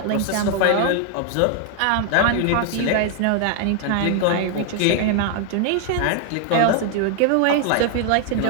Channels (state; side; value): different; both; correlation 0.00